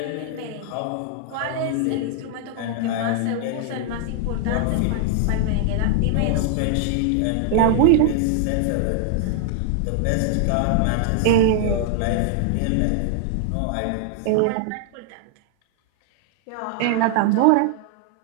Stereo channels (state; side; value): different; both; correlation 0.00